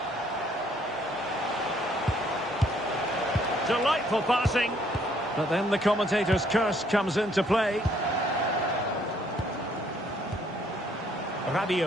Delightful passing. But then the commentator's curse comes into play.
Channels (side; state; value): both; normal; correlation 0.65